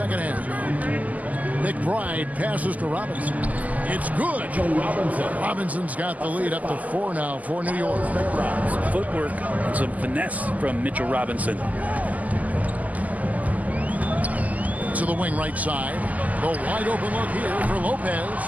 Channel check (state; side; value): late; left; 0.077 ms